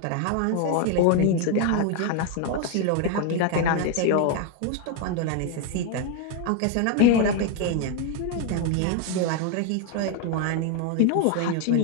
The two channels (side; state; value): both; different; correlation 0.01